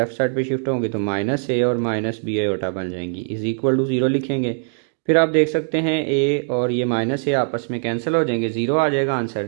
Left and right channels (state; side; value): silent; left; 65 dB below the other